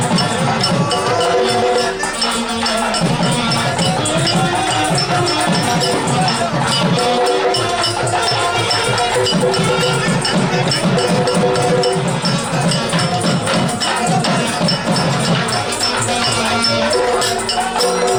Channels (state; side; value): identical; both; correlation 1.00